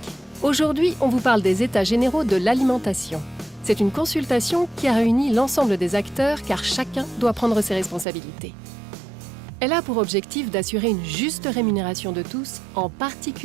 Aujourd'hui, on vous parle des États généraux de l'alimentation. C'est une consultation qui a réuni l'ensemble des acteurs car chacun doit prendre ses responsabilités. Elle a pour objectif d'assurer une juste rémunération de tous, en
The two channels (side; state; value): left; drops out; at 8.1 s